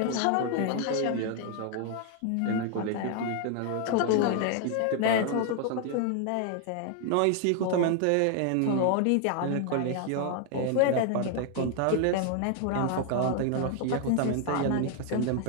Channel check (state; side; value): different; both; correlation 0.00